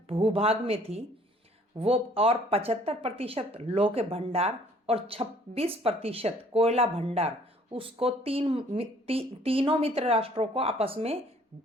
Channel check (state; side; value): normal; both; correlation 0.58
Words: भूभाग में थी वो, और 75% लौह के भंडार और 26% कोयला भंडार, उसको तीनों मित्र राष्ट्रों को आपस में